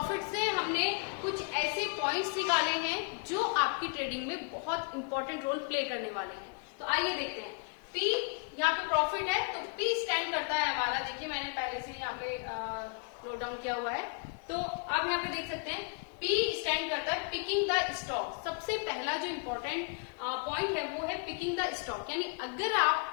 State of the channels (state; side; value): quieter; right; 37.0 dB